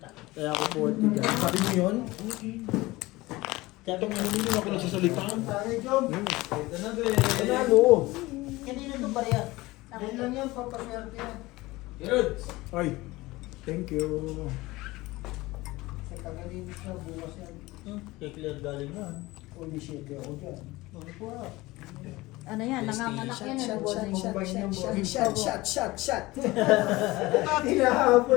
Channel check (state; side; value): quieter; right; 20.1 dB